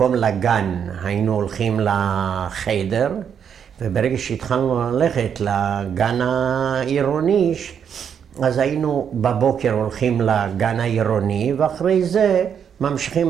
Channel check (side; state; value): left; quieter; 7.9 dB